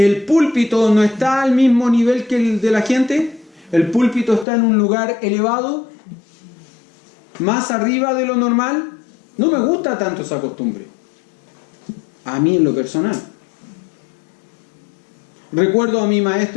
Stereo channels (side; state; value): right; drops out; at 4.5 s